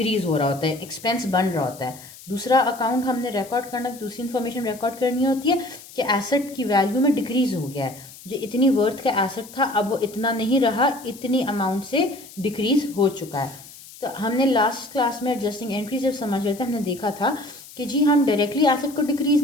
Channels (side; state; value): left; noise; hiss, 18 dB below the sound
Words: हो रहा होता है, एक्सपेंस बन रहा होता है। दूसरा अकाउंट हमने रिकॉर्ड करना, दूसरी इन्फॉर्मेशन रिकॉर्ड करनी होती है कि एसेट की वैल्यू में डिक्रीज हो गया है, जो इतनी वर्थ का एसेट था अब वो इतना नहीं रहा, इतनी अमाउंट से डिक्रीज हो चुका है। तो हमने लास्ट क्लास में एडजस्टिंग एंट्री जब समझ रहे थे हमने देखा था कि जी हम डायरेक्टली एसेट को डिक्रीज